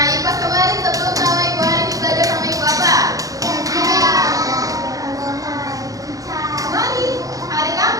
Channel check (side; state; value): left; late; 0.17 ms